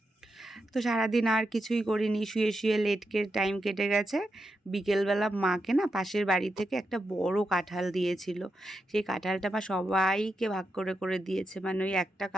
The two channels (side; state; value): both; normal; correlation 0.86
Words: তো সারাদিন আর কিছুই করিনি, শুয়ে শুয়ে লেটকে টাইম কেটে গেছে। বিকেলবেলা মাকে না পাশের বাড়ি থেকে একটা বড় কাঁঠাল দিয়েছিল। সেই কাঁঠালটা মা সবাইকে ভাগ করে করে দিয়েছে, মানে ওই একটা